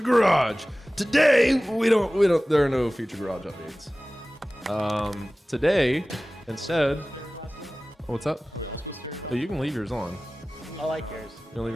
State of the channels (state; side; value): normal; both; correlation 0.97